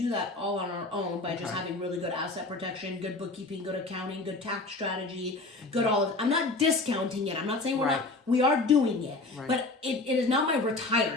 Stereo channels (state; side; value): quieter; right; 3.2 dB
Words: that all on our own by just having really good asset protection, good bookkeeping, good accounting, good tax strategy, good all of. I'm not discounting it. I'm not saying we're not. We are doing it, but it is not my